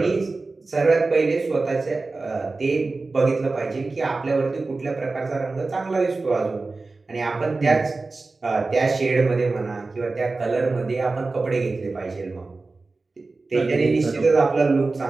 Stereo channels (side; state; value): left; quieter; 3.6 dB